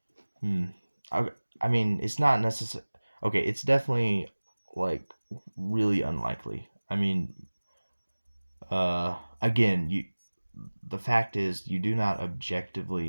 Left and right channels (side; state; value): both; inverted; correlation -1.00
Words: hmm. I, I mean, it's not necessary. Okay, it's definitely like really unlikely. I mean, again, the fact is you do not